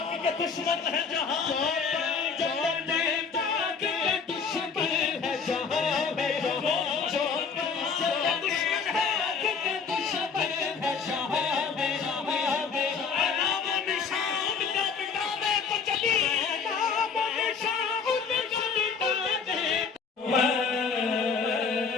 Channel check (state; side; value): quieter; right; 5.6 dB